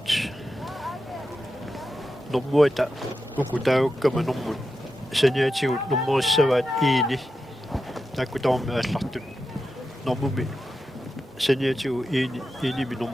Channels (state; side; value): normal; both; correlation 0.89